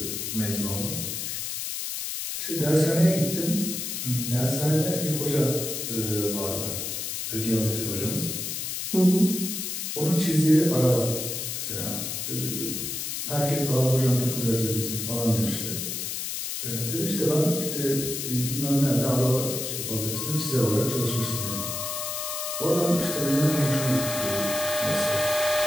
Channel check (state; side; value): noise; left; hiss, 4 dB below the sound